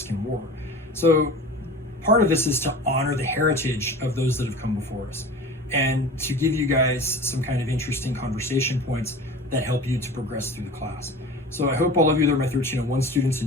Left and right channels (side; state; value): both; normal; correlation 0.37